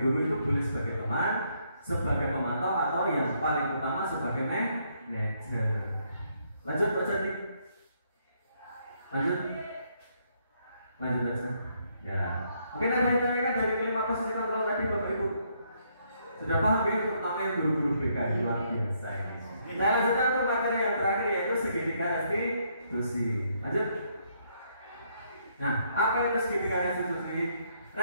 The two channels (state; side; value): inverted; both; correlation -0.72